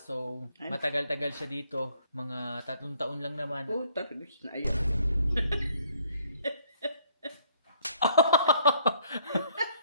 So, matagal-tagal siya dito. Mga 3 taon lang naman. Oh, targis na yan.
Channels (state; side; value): inverted; both; correlation -0.64